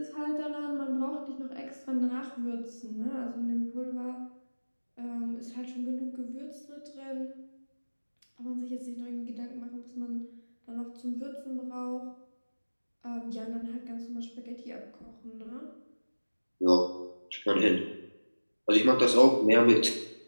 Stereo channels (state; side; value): inverted; both; correlation -1.00